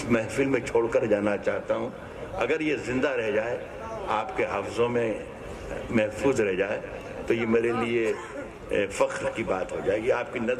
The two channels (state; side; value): identical; both; correlation 1.00